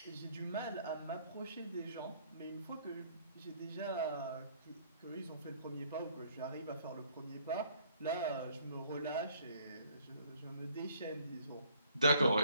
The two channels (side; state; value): both; inverted; correlation -0.61